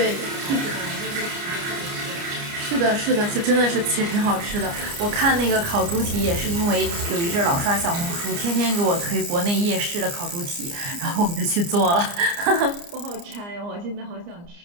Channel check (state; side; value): late; left; 29 ms